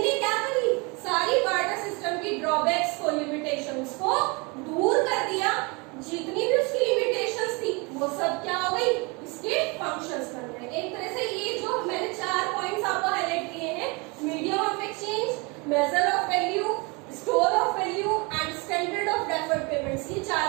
ने क्या करी, सारी बार्टर सिस्टम की ड्रॉबैक्स को, लिमिटेशंस को दूर कर दिया। जितनी भी उसकी लिमिटेशंस थी वो सब क्या हो गई, इसके फंक्शंस बन गए। एक तरह से ये जो मैंने 4 पॉइंट्स आपको हाईलाइट किए हैं, medium of exchange, major of value, store of value and standard of deferred payments, ये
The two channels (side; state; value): left; quieter; 28.8 dB